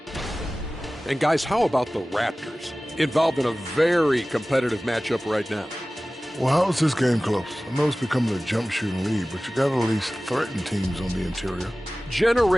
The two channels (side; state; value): both; normal; correlation 0.97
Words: And guys, how about the Raptors? Involved in a very competitive matchup right now. Well, how is this game close? I know it's becoming a jump shooting lead, but you got to at least threaten teams on the interior.